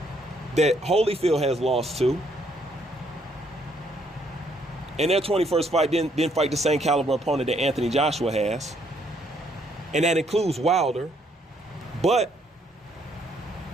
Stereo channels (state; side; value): normal; both; correlation 0.70